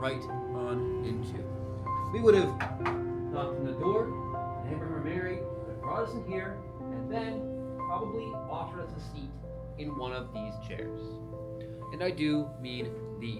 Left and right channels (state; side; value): identical; both; correlation 1.00